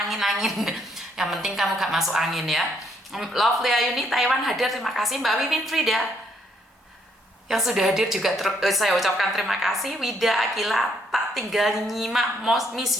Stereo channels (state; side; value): normal; both; correlation 0.70